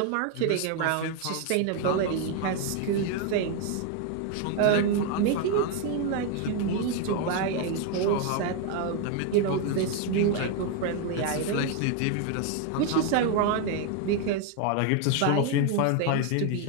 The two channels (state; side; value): different; both; correlation 0.01